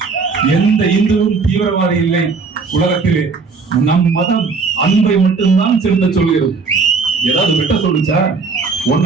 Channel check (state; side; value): quieter; left; 4.6 dB